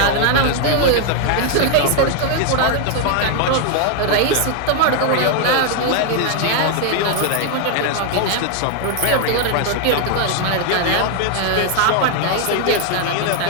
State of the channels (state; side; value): different; both; correlation 0.00